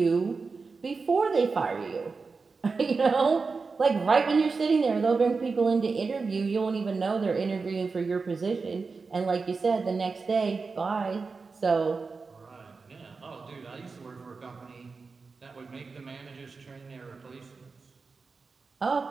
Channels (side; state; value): left; quieter; 4.5 dB